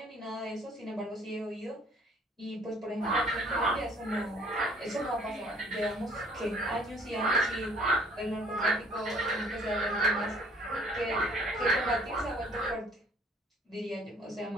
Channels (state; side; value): normal; both; correlation 0.58